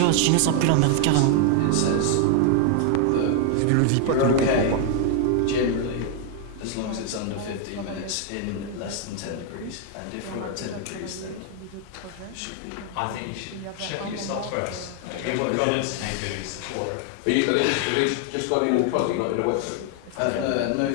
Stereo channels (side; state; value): both; different; correlation 0.00